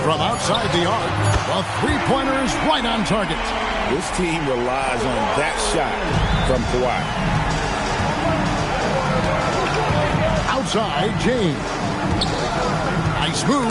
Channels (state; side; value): identical; both; correlation 1.00